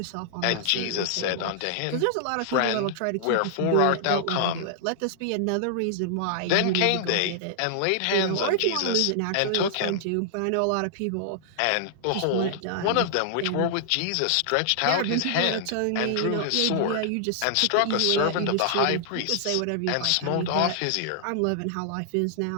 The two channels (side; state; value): both; different; correlation -0.01